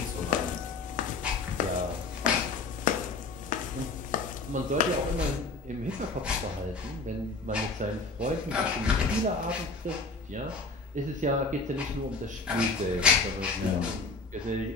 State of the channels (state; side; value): quieter; right; 3.6 dB